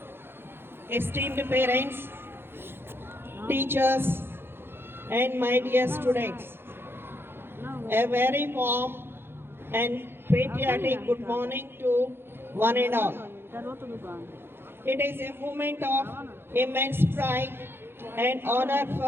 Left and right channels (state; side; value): late; left; 0.11 ms